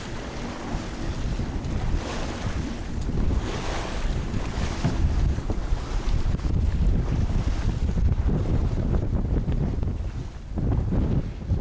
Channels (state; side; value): identical; both; correlation 1.00